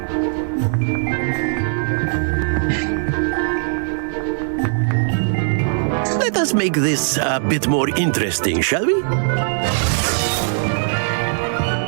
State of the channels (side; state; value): left; silent; digital silence